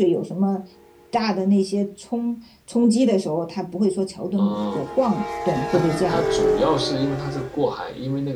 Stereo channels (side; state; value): both; identical; correlation 1.00